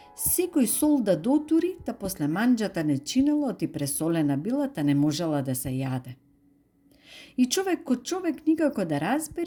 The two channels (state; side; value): identical; both; correlation 1.00